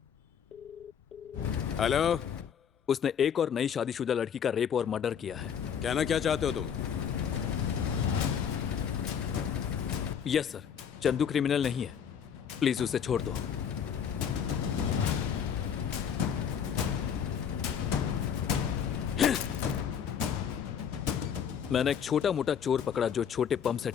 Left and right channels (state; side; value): quieter; right; 7.9 dB